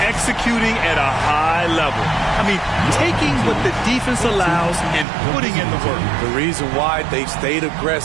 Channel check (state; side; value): drops out; left; at 5.1 s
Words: at a high level. I mean, taking what the defense allows and putting in the work. The reason why they've stayed